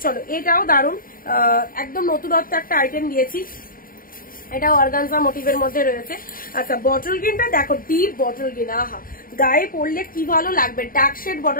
চলো এটাও দারুণ, একদম নতুনত্ব একটা আইটেম দিয়েছি। এটা অর্গানজা মোটিভের মধ্যে রয়েছে। আচ্ছা বটল গ্রিনটা দেখো, ডিপ বটল গ্রিন, আহা গায়ে পড়লে কি ভালো লাগবে। ডার্ক শেড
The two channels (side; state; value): right; late; 0.41 ms